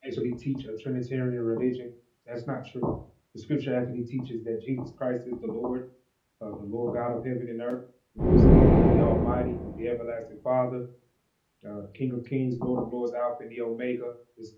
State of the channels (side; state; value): both; identical; correlation 1.00